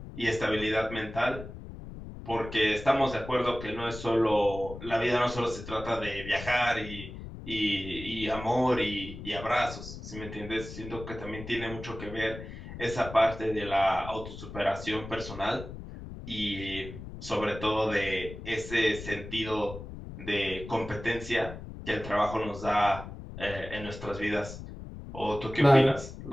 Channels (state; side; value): noise; left; rumble, 11 dB below the sound